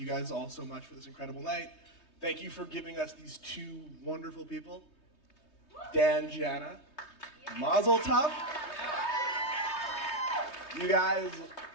guys all so much for this incredible night. Thank you for giving us these two wonderful people. Dan, Jana, Mazel Tov. You guys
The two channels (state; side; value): late; right; 3.2 ms